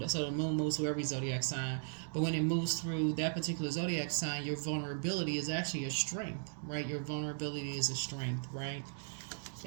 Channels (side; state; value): left; silent; digital silence